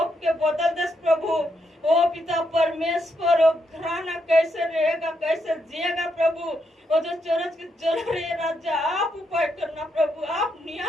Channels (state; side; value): normal; both; correlation 0.79